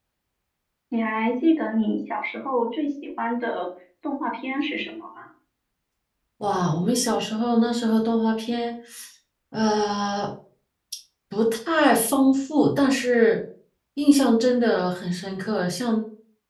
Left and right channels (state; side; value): identical; both; correlation 1.00